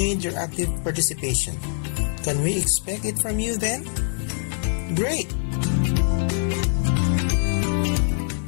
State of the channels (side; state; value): right; silent; 63 dB below the other